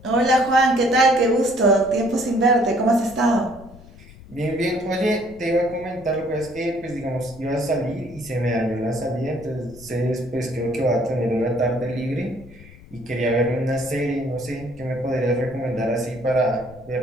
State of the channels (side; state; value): left; noise; rumble, 20 dB below the sound